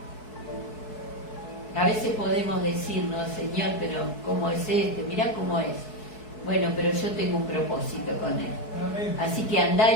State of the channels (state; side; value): late; right; 4.6 ms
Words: A veces podemos decir: no, Señor, pero ¿cómo es este? Mirá cómo es. Bueno, pero yo tengo un propósito con él. Amén. Así que andá